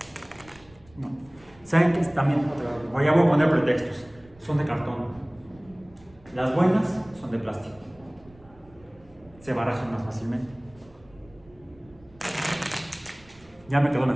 No. ¿Saben qué? También, ya voy a poner pretextos. Son de cartón. Las buenas son de plástico. Se barajan más fácilmente. Ya me quedó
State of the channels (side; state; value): right; noise; rumble, 26 dB below the sound